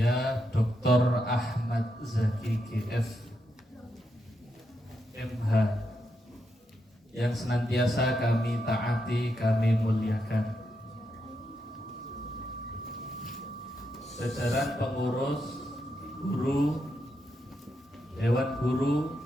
Dr. Ahmad Zaki GF MH, yang senantiasa kami taati, kami muliakan. Jajaran pengurus, guru, dewan guru,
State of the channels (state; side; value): normal; both; correlation 0.83